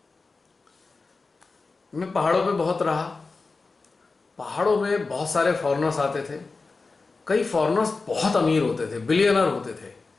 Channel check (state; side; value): quieter; right; 4.0 dB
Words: मैं पहाड़ों पे बहुत रहा। पहाड़ों में बहुत सारे फॉरेनर्स आते थे। कई फॉरेनर्स बहुत अमीर होते थे, बिलियनर होते थे,